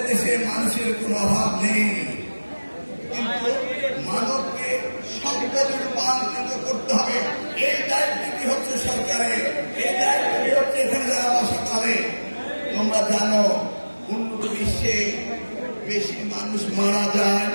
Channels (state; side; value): inverted; both; correlation -1.00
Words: দেশে মানুষের কোনো অভাব নেই, কিন্তু মানবকে সম্পদে রূপান্তরিত করতে হবে। এই দায়িত্বটি হচ্ছে সরকারের, এই দায়িত্বটি হচ্ছে এখানে যারা বাসা করে। তোমরা জানো উন্নত বিশ্বে বেশি মানুষ মারা যায়,